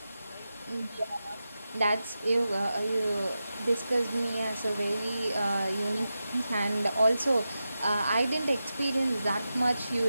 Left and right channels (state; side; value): inverted; both; correlation -0.91